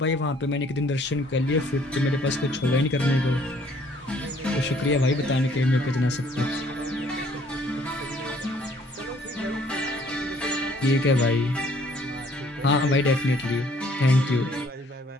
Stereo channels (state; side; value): normal; both; correlation 0.61